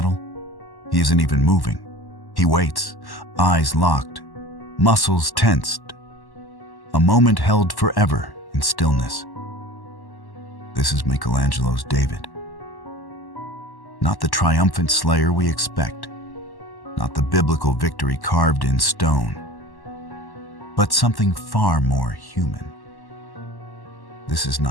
He isn't even moving. He waits, eyes locked, muscles tensed. A moment held forever in stillness. This is Michelangelo's David. Not the triumphant slayer we expect, not the biblical victory carved in stone, but something far more human. This is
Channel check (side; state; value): right; late; 1.1 ms